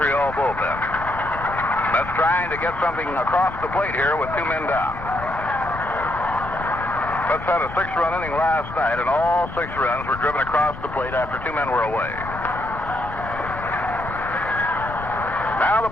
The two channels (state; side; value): noise; left; rumble, 13 dB below the sound